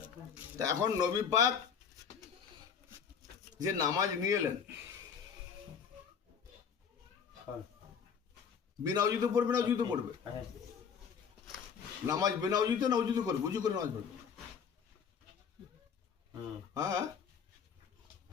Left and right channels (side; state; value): right; quieter; 6.9 dB